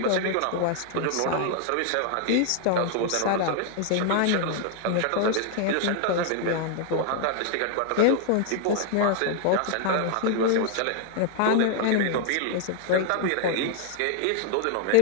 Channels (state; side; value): different; both; correlation 0.00